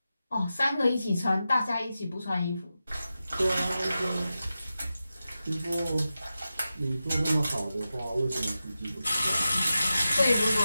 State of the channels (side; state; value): both; inverted; correlation -0.92